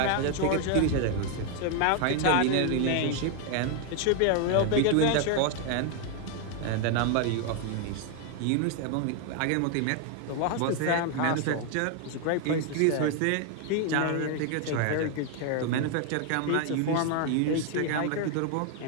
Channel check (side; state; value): both; different; correlation 0.00